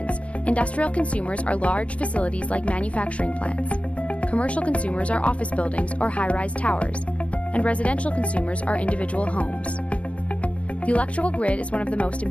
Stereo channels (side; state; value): right; late; 0.063 ms